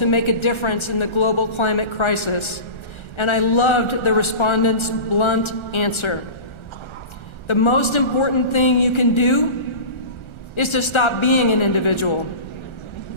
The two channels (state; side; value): late; right; 1.3 ms